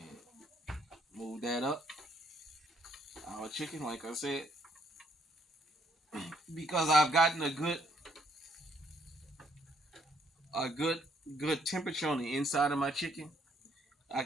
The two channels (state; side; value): normal; both; correlation 0.68